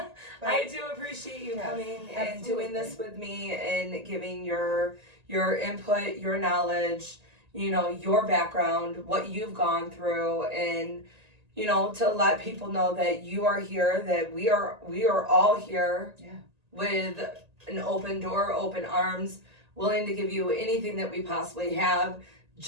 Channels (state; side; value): late; left; 1.8 ms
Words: I do appreciate you coming and doing this with me and giving your input, your knowledge, your background, what you've gone through, and to let people know that you are here, that we are all here with an open door, open arms, willing to give you anything that we possibly have